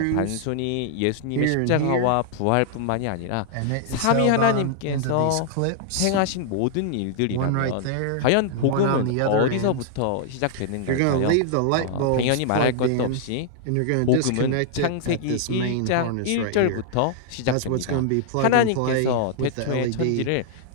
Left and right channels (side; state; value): both; different; correlation -0.01